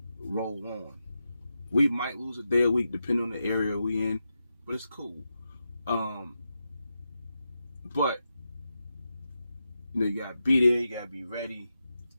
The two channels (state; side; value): inverted; both; correlation -0.88